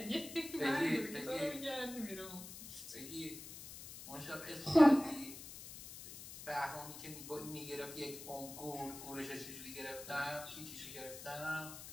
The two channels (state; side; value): noise; left; hiss, 12 dB below the sound